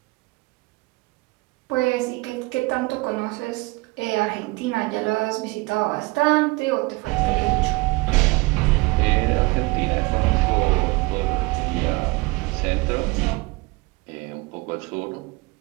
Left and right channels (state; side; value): quieter; left; 24.2 dB